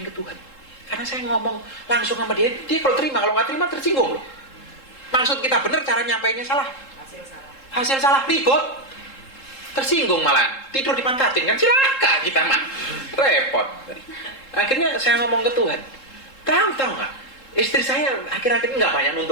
ke Tuhan. Karena saya ngomong langsung sama dia kalau terima, kalau nggak terima tersinggung loh. Maksud kita benar, cara nyampainya salah. Hasil salah, ribut. Tersinggung malah, tidur dipantatin kan celaka kita mah. Repot. Akhirnya saya ngomong ke Tuhan. Tahu nggak? Istri saya akhir-akhir ini nggak banyak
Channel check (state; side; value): late; right; 3.7 ms